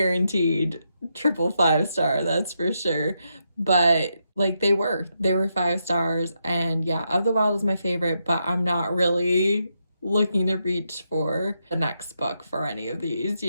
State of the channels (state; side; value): inverted; both; correlation -0.82